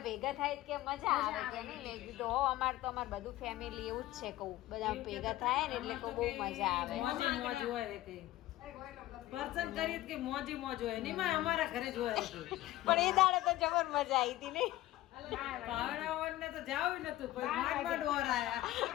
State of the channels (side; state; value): right; quieter; 15.9 dB